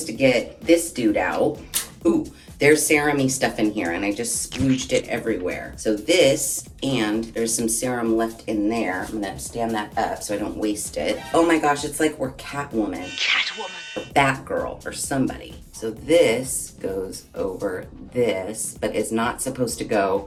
to get this dude out. Ooh, there's serum-y stuff in here, and I just splooged it everywhere. So this, and there's some serum left in there. I'm gonna stand that up so I don't waste it. Oh my gosh, it's like we're Catwoman. Or Batgirl, or somebody. So this goes over this, but it's not supposed to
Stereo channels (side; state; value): both; identical; correlation 1.00